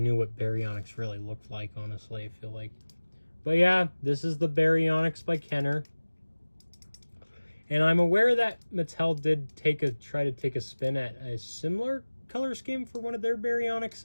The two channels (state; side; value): inverted; both; correlation -1.00